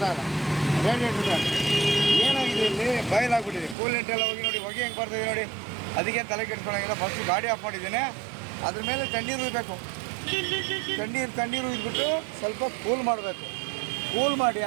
ಇಲ್ಲ, radiator fan ಏನಾಗಿದೆ ಇಲ್ಲಿ ಬಯಲಾಗ್ಬಿಟ್ಟಿದೆ. ಕೂಲೆಂಟ್ ಎಲ್ಲ ಹೋಗಿ ನೋಡಿ, ಹೊಗೆ ಹೆಂಗೆ ಬರ್ತಿದೆ ನೋಡಿ. ಅದಕ್ಕೆ ತಲೆ ಕೆಡ್ಸ್ಕೊಳ್ಳೋಂಗಿಲ್ಲ. ಫಸ್ಟು ಗಾಡಿ ಆಫ್ ಮಾಡಿದ್ದೇನೆ, ಅದ್ರ ಮೇಲೆ ತಣ್ಣೀರು ಉಯ್ಬೇಕು. ತಣ್ಣೀರು ಉಯ್ದುಬಿಟ್ಟು ಸ್ವಲ್ಪ ಕೂಲ್ ಮಾಡಬೇಕು. ಕೂಲ್ ಮಾಡಿ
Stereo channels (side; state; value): left; drops out; at 3.8 s